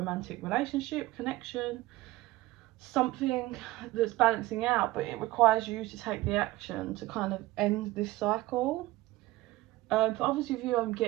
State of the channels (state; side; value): quieter; left; 17.7 dB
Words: relationship, connection, something that's balancing out, but it requires you to take the action to kind of end this cycle. For others of you, I'm